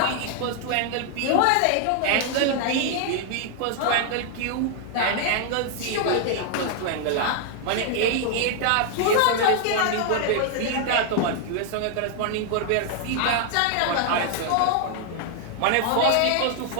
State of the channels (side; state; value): both; different; correlation 0.00